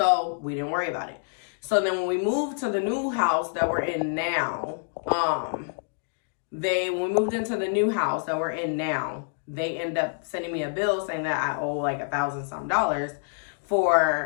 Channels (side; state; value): right; silent; digital silence